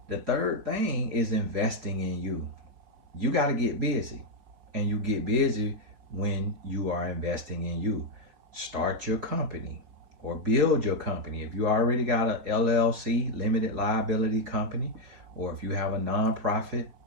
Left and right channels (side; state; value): left; late; 4.6 ms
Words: The third thing is investing in you. You gotta get busy, and you get busy when you are investing in you. Start your company or build your company. If you already got a LLC, limited liability company, or if you have a nonprofit